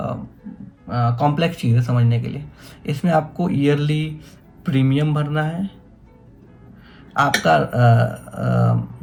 कॉम्प्लेक्स चीज़ है समझने के लिए। इसमें आपको ईयरली प्रीमियम भरना है, आपका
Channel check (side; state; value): both; identical; correlation 1.00